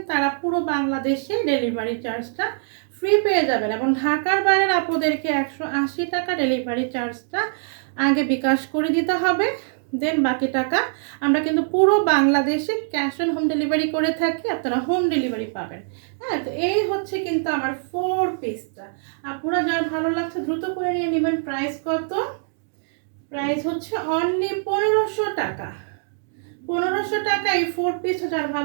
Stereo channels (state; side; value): silent; left; digital silence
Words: তারা পুরো বাংলাদেশে ডেলিভারি চার্জটা ফ্রি পেয়ে যাবেন, এবং ঢাকার বাইরের আপনাদেরকে 180 টাকা ডেলিভারি চার্জটা আগে বিকাশ করে দিতে হবে, দেন বাকি টাকা আমরা কিন্তু পুরো বাংলাদেশে ক্যাশ অন হোম ডেলিভারি করে থাকি, আপনারা হোম ডেলিভারি পাবেন। হ্যাঁ, তো এই হচ্ছে কিন্তু আমার 4 পিসটা। আপনারা যার ভালো লাগছে দ্রুত করে নিয়ে নেবেন। প্রাইস কত? প্রাইস হচ্ছে অনলি 1500 টাকা। 1500 টাকা এই 4 পিস, যার